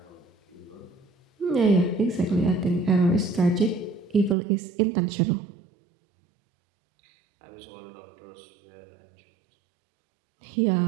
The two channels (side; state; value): left; drops out; at 4.4 s